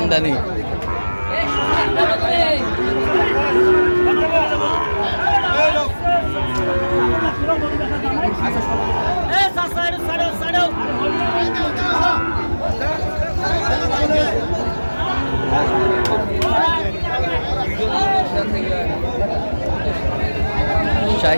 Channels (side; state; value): both; inverted; correlation -1.00